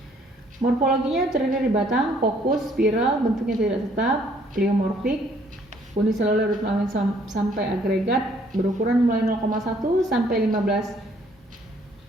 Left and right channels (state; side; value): normal; both; correlation 0.63